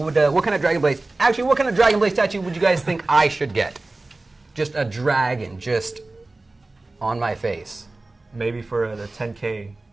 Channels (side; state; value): left; quieter; 3.1 dB